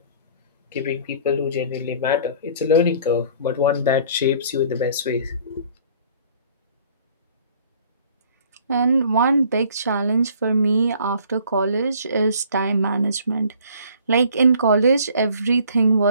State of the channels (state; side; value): inverted; both; correlation -0.54